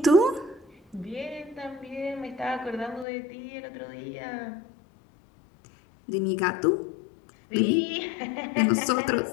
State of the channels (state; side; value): drops out; right; at 3.1 s